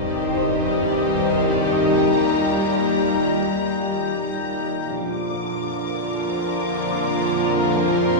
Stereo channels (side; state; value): both; normal; correlation -0.01